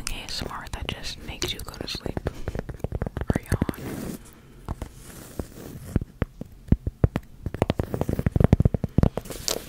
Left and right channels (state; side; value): identical; both; correlation 1.00